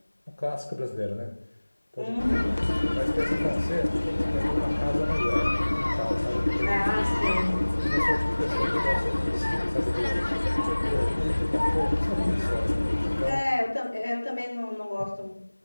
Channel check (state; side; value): inverted; both; correlation -1.00